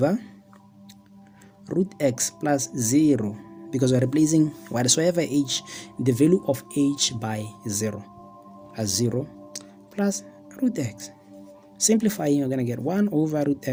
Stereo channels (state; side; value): identical; both; correlation 1.00